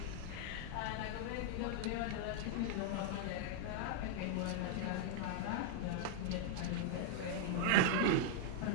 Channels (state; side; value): different; both; correlation -0.01